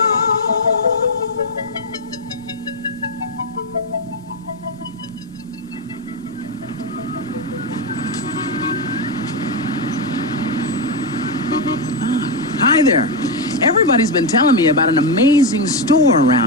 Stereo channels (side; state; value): left; noise; rumble, 26 dB below the sound